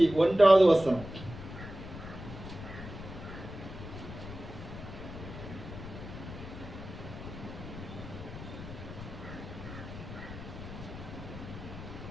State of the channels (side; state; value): left; noise; rumble, 11 dB below the sound